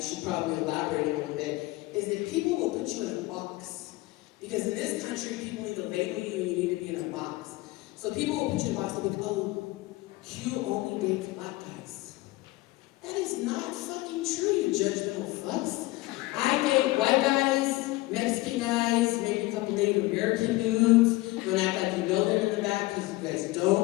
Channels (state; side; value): quieter; right; 19.9 dB